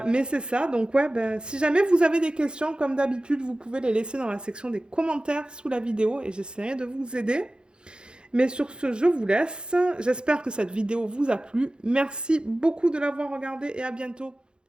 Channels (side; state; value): left; late; 0.050 ms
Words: Mais c'est ça, donc ouais, ben, si jamais vous avez des questions, comme d'habitude, vous pouvez les laisser dans la section des commentaires sous la vidéo et j'essaierai de vous aider. Mais sur ce, je vous laisse. J'espère que cette vidéo vous a plu. Merci beaucoup de l'avoir regardée et à bientôt.